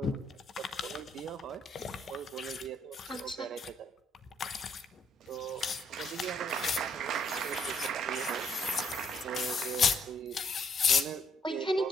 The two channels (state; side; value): normal; both; correlation 0.69